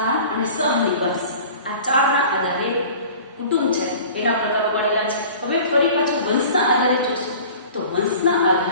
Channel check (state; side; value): inverted; both; correlation -0.43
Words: અને સહનિવાસ, આ ચારના આધારે કુટુંબ છે એના પ્રકારો પડેલા છે. હવે ફરી પાછું વંશના આધારે જોશું તો વંશના